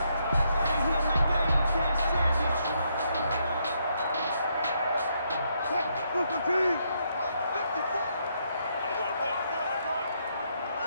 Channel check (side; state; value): both; inverted; correlation -0.76